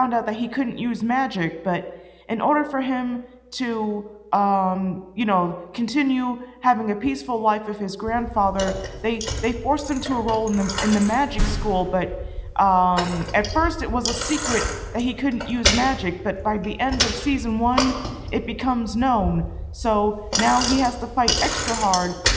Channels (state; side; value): identical; both; correlation 1.00